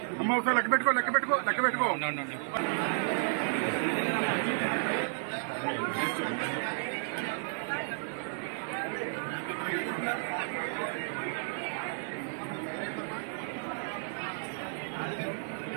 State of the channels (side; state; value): left; silent; digital silence